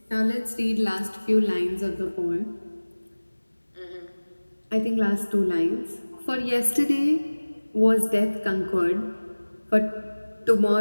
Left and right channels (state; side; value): inverted; both; correlation -1.00